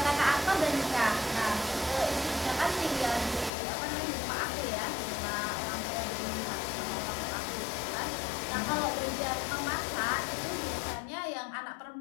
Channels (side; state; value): right; drops out; at 3.5 s